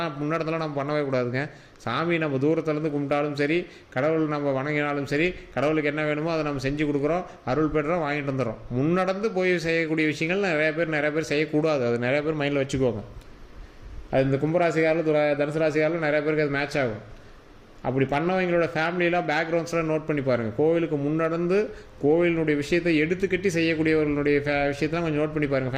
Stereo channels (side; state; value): both; identical; correlation 1.00